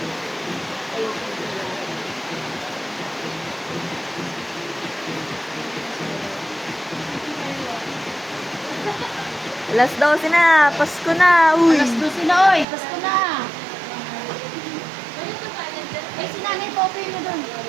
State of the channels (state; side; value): drops out; left; at 12.7 s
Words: Alas 12 na. Pasko na. Uy. Alas 12 na, oy. Pasko na. Ay, si Nanay Poppy mo doon.